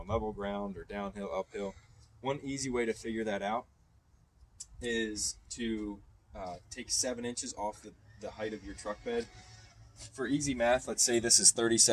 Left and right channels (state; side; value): identical; both; correlation 1.00